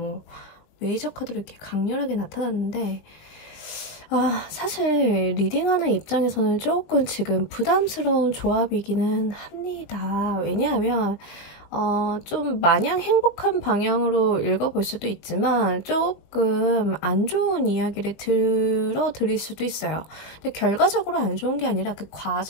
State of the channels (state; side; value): late; right; 20 ms